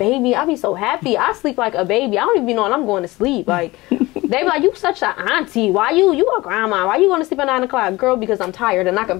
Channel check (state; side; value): quieter; right; 20.5 dB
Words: I be so happy. I sleep like a baby. I don't even know when I'm going to sleep. Like, they be like, you such an auntie. Why you a grandma? Why you going to sleep at 9 o'clock? Girl, because I'm tired and I can